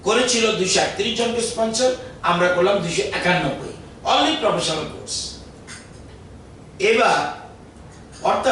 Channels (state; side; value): identical; both; correlation 1.00